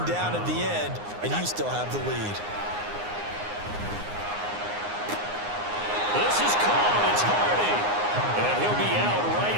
down at the end, and you still have the lead. This is caught. It's Hardy. And he'll be out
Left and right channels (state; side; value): late; left; 9.7 ms